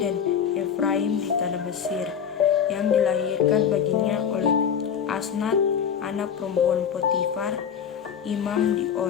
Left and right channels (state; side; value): quieter; right; 7.8 dB